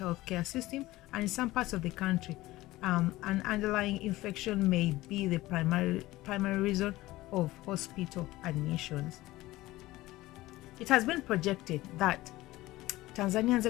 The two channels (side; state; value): right; quieter; 17.9 dB